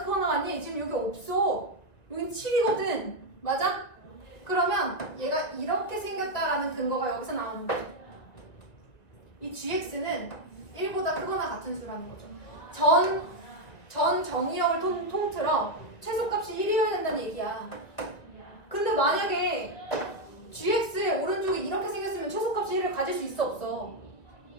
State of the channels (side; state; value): right; late; 2.1 ms